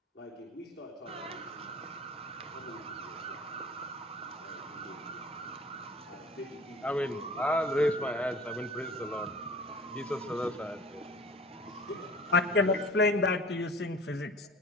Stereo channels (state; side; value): normal; both; correlation 0.44